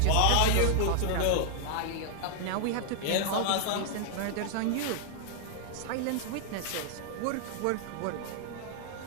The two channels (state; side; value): different; both; correlation 0.00